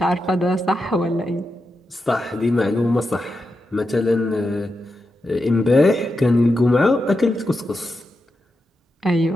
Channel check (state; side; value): normal; both; correlation 0.88